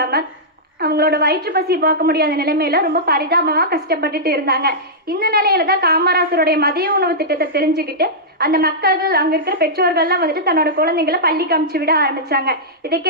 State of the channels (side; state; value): both; normal; correlation -0.12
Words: அவங்களோட வயிற்று பசி போக்க முடியாத நிலைமையில ரொம்ப பரிதாபமா கஷ்டப்பட்டுட்டு இருந்தாங்க. இந்த நிலையில தான் காமராசருடைய மதிய உணவு திட்டத்தை தெரிஞ்சுக்கிட்டு அந்த மக்கள்கள், அங்க இருக்கிற பெற்றோர்கள்லாம் வந்துட்டு தன்னோட குழந்தைங்களை பள்ளிக்கு அனுப்பிச்சு விட ஆரம்பிச்சாங்க. இதை